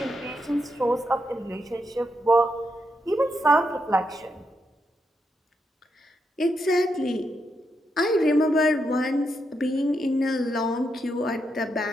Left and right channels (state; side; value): normal; both; correlation 0.82